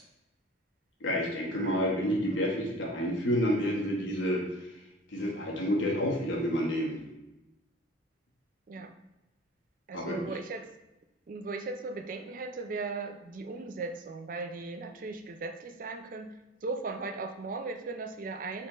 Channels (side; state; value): both; normal; correlation 0.41